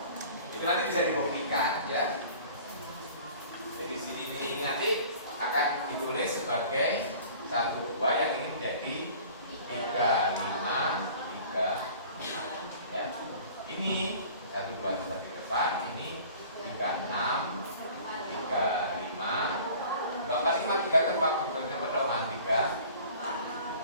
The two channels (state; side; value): inverted; both; correlation -0.46